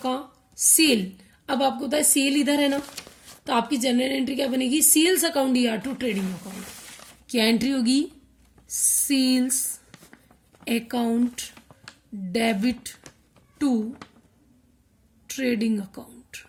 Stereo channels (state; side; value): identical; both; correlation 1.00